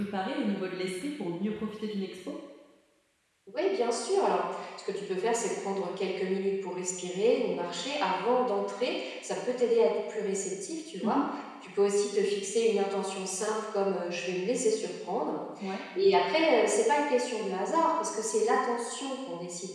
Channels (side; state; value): both; identical; correlation 1.00